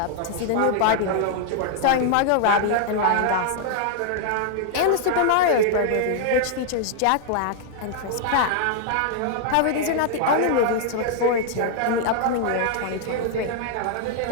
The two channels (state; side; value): different; both; correlation 0.00